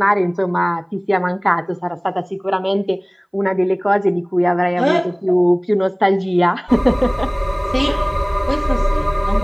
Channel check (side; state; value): both; identical; correlation 1.00